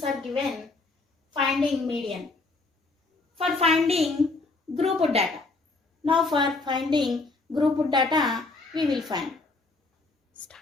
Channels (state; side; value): quieter; right; 3.5 dB